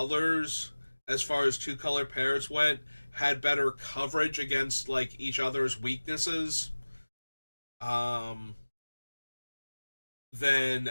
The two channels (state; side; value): inverted; both; correlation -1.00